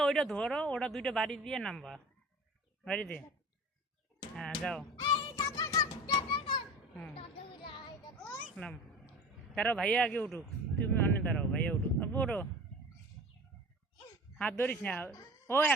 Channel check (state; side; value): normal; both; correlation 0.38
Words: ওইটা ধরো, ওটা দুইটা বাড়ি দিয়ে নামবা, বাড়ি দিয়ে। হ্যাঁ যাও। নাম দাঁড়াও, ভাইয়া আগে উঠুক, তুমি অনেক দাঁড়াও, ভাইয়া উঠুক। আব্বু ওঠো, হাত ধরিস না, ও